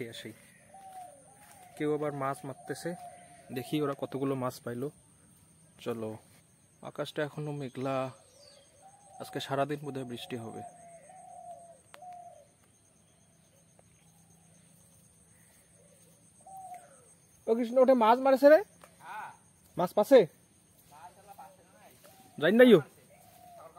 আসি। কেউ আবার মাছ মারতেছে, দেখি ওরা কতগুলো মাছ পাইলো। চলো, আকাশটা এখনো মেঘলা, আজকে সারাদিন বোধহয় বৃষ্টি হবে। ও কৃষ্ণ, ওঠে মাছ মারেছে রে, মাছ পাছে যাই নাই,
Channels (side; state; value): both; identical; correlation 1.00